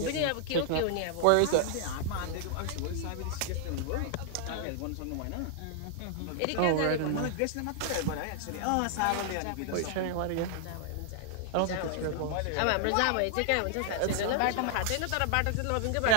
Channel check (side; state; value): both; different; correlation -0.01